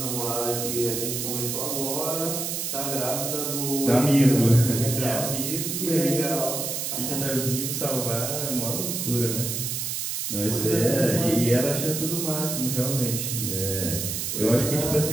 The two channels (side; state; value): right; noise; hiss, 3 dB below the sound